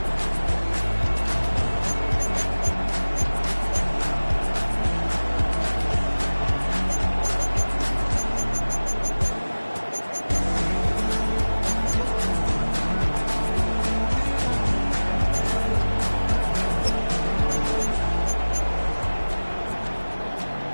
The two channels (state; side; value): inverted; both; correlation -1.00